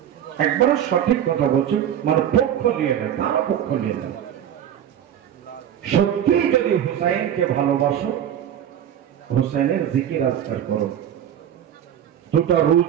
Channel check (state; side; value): quieter; left; 10.0 dB